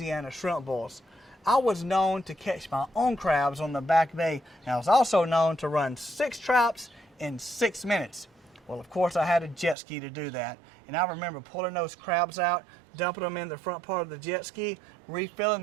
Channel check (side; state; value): left; drops out; at 9.8 s